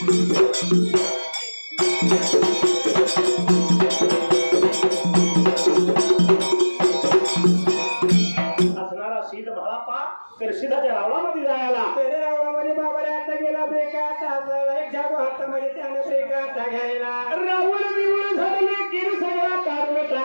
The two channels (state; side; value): inverted; both; correlation -1.00